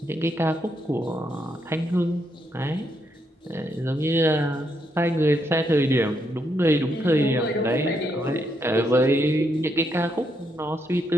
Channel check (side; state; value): both; normal; correlation 0.78